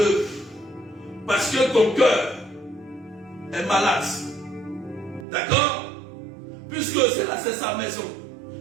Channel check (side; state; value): left; drops out; at 5.2 s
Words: Parce que ton cœur est malade. D'accord? Puisque c'est sa maison.